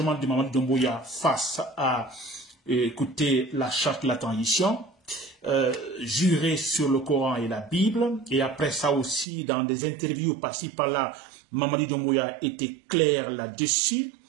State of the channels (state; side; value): drops out; left; at 9.2 s